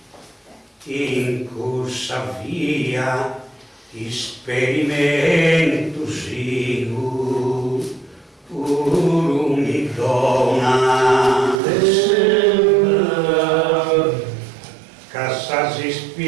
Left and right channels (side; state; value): left; drops out; at 11.6 s